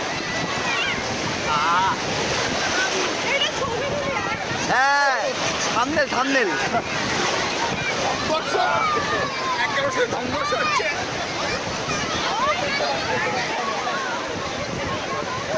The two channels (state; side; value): identical; both; correlation 1.00